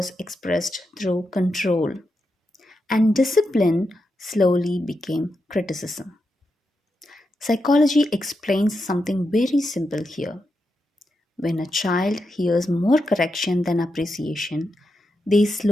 expressed through control, and discipline slowly became criticism. Psychology explains something very simple here. When a child hears more correction than appreciation, they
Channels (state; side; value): normal; both; correlation 0.86